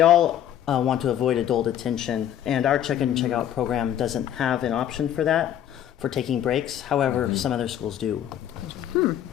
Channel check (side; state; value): right; quieter; 10.8 dB